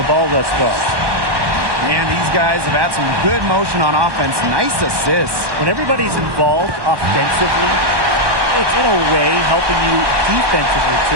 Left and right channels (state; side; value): late; left; 1.2 ms